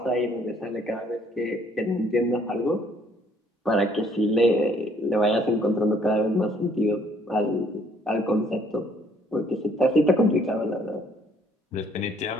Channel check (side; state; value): both; normal; correlation 0.63